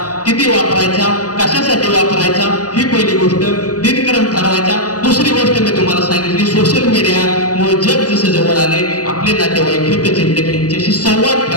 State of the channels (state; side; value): late; right; 0.68 ms